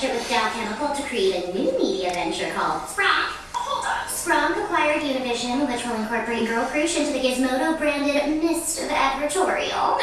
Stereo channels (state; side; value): identical; both; correlation 1.00